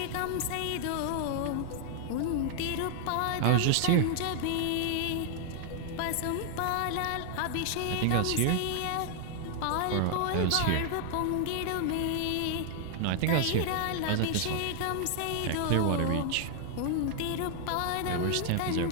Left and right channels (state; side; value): different; both; correlation 0.00